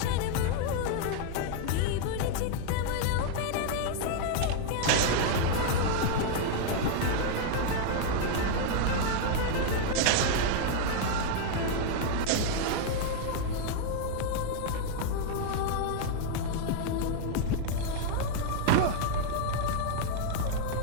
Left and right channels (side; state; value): both; different; correlation 0.00